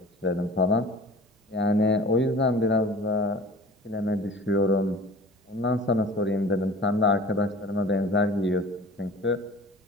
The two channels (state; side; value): normal; both; correlation 0.42